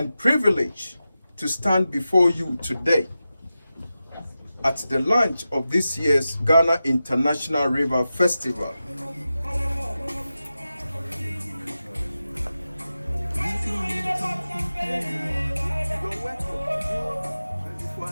privilege to stand before you today at the launch of this year's Ghana International River Festival.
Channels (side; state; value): both; inverted; correlation -0.93